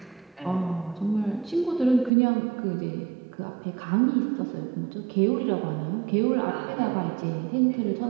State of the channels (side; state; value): left; drops out; at 2.1 s